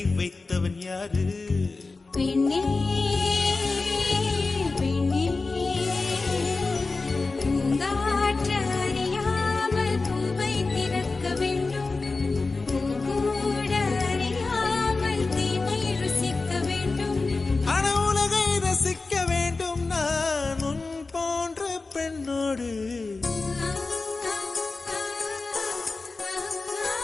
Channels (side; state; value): right; quieter; 3.8 dB